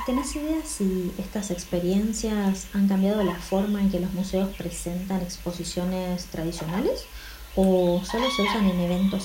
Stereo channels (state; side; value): identical; both; correlation 1.00